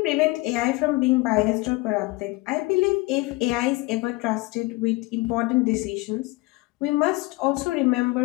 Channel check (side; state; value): right; quieter; 21.8 dB